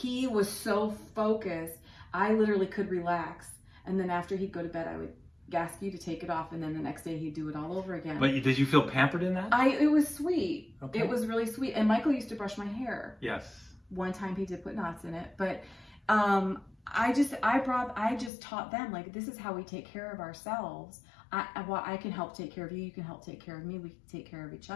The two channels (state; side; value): drops out; right; at 18.3 s